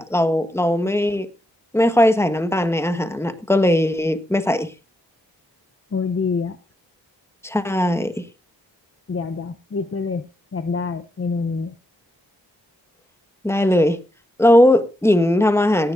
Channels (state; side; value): normal; both; correlation 0.83